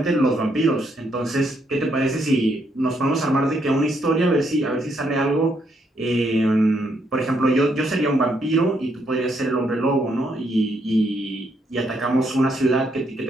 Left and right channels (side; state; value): both; normal; correlation 0.75